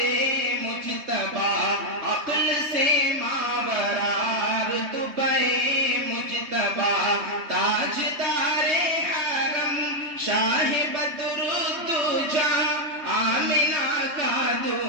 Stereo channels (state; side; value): late; left; 3.2 ms